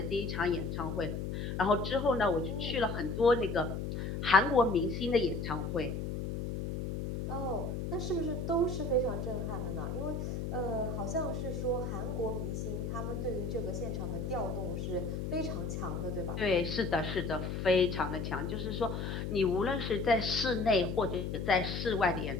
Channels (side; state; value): left; noise; hum, 3 dB below the sound